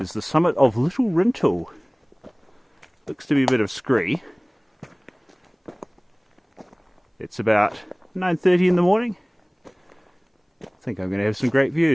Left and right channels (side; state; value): both; identical; correlation 1.00